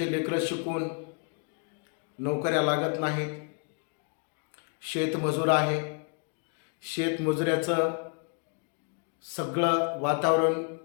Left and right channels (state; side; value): quieter; right; 38.4 dB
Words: लेकरं शिकून नोकऱ्या लागत नाहीत. शेतमजूर आहे. शेतमजुऱ्याचं सगळं वातावरण